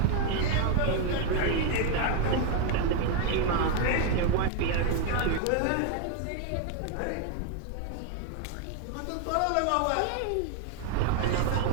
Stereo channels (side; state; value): both; different; correlation 0.01